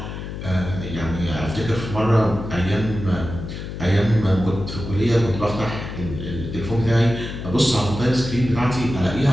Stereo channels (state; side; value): noise; left; hum, 8 dB below the sound